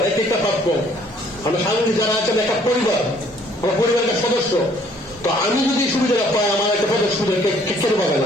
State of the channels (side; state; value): both; normal; correlation 0.61